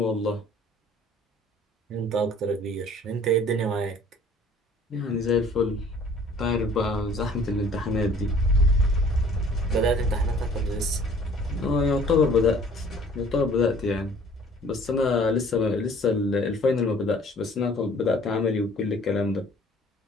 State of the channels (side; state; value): both; normal; correlation 0.53